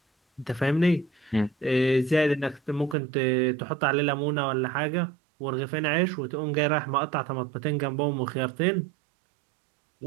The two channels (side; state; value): left; drops out; at 3.0 s